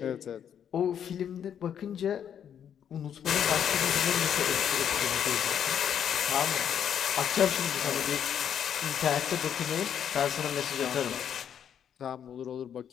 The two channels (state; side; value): quieter; right; 8.8 dB